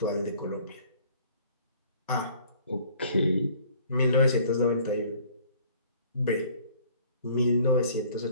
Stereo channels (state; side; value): inverted; both; correlation -0.54